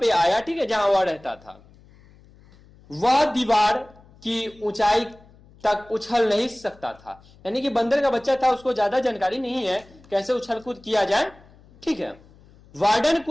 आया। ठीक है, जहां वह रहता था। वह दीवार की ऊंचाई तक उछल नहीं सकता था, यानी कि बंदर का बच्चा था, उसको ज्यादा जानकारी नहीं है कैसे उछल कूद किया जाए। ठीक है, वार्डन,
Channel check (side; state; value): left; noise; hum, 26 dB below the sound